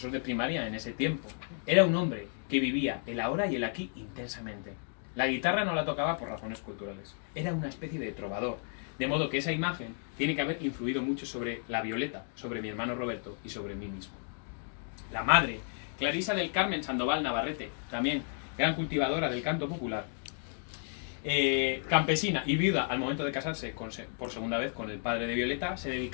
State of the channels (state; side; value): silent; right; 56 dB below the other